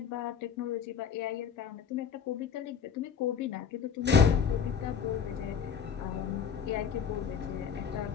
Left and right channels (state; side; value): quieter; right; 7.0 dB